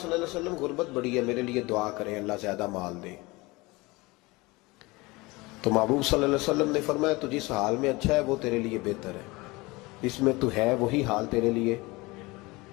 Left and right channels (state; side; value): quieter; right; 23.1 dB